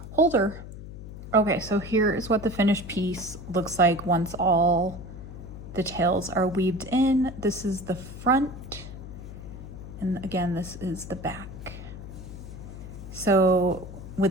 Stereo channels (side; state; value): left; noise; hum, 12 dB below the sound